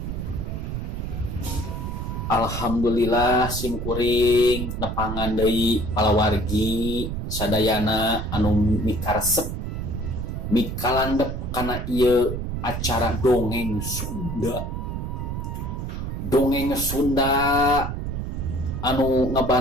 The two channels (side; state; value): right; noise; rumble, 4 dB below the sound